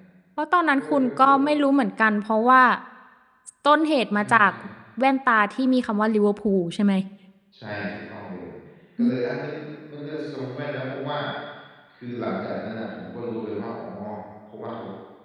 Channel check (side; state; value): both; identical; correlation 1.00